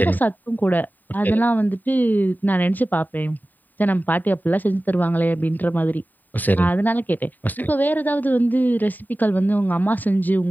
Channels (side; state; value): right; late; 0.087 ms